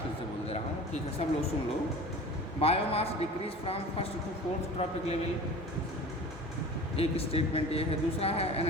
फिर से बोल दे रहा हूँ, ठीक है, सब लोग सुन लो। Biomass decrease from first to fourth trophic level, एक स्टेटमेंट ये है। दूसरा है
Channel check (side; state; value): both; normal; correlation 0.38